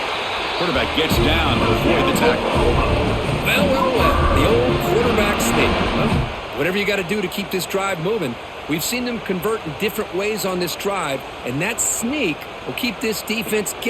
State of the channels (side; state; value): both; identical; correlation 1.00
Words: Quarterback gets down to avoid the tackle. Well. The old quarterback sneak. Well, whatever you got to do to keep this drive moving. We've seen them convert in different ways on this drive, and that sneak will keep this defense